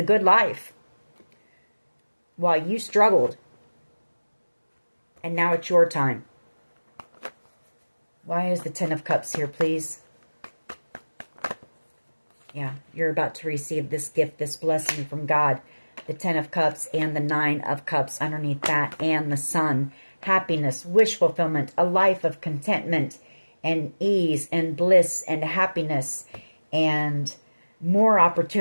good life while you struggled. And now it's your time. Why is the Ten of Cups here, please? Yeah, you're about to receive this gift, this blessing from God. The Ten of Cups and the Nine of Cups underneath that, and the Sun. Happiness, wish fulfillment, a life of contentment and ease and bliss and happiness and more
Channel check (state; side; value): inverted; both; correlation -1.00